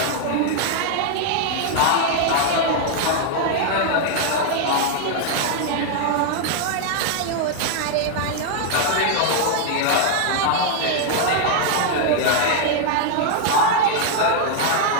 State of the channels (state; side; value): different; both; correlation 0.00